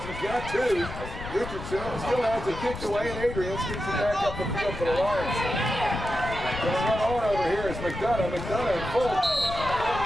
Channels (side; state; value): left; noise; rumble, 10 dB below the sound